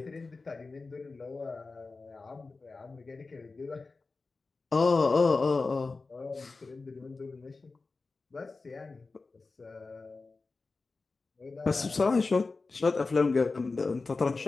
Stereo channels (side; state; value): right; quieter; 3.9 dB